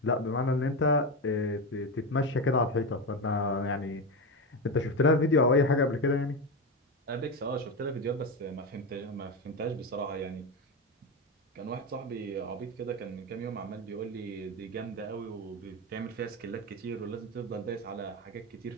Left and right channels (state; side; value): normal; both; correlation 0.16